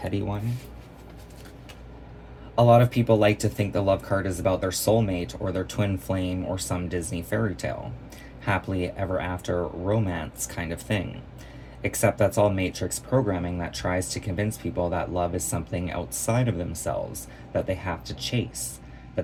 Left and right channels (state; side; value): identical; both; correlation 1.00